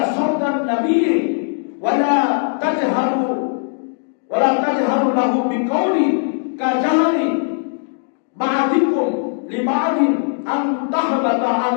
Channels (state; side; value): silent; right; digital silence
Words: সাওতান নাবিয়্যি ওয়া লা তাজহারু লাহু বিকাউলি কাজাহরি বা'দিকুম লিবা'দিন আন তাহবাতা